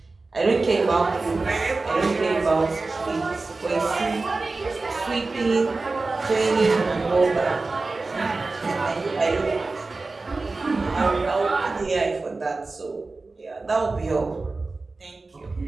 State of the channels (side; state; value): left; quieter; 3.6 dB